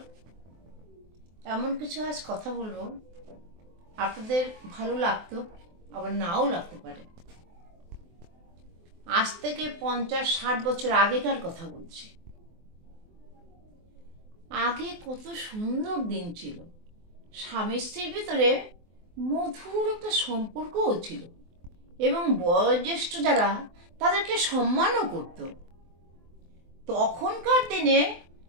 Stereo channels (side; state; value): left; late; 23 ms